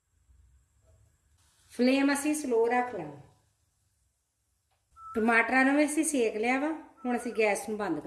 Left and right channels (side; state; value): both; identical; correlation 1.00